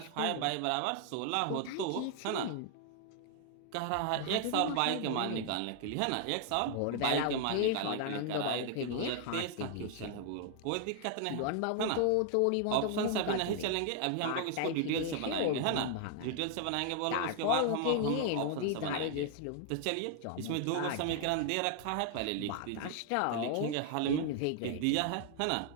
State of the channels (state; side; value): different; both; correlation 0.00